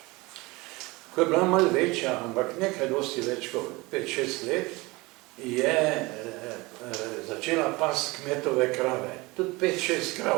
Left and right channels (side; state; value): left; quieter; 23.2 dB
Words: Ko je bila malo večja, ampak nekaj dosti več kot 5-6 let, je začela past kmetove krave. Tudi 5-6